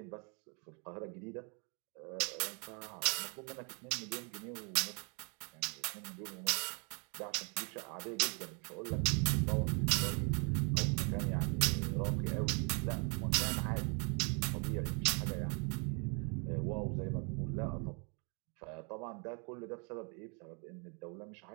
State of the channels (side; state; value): left; quieter; 36.3 dB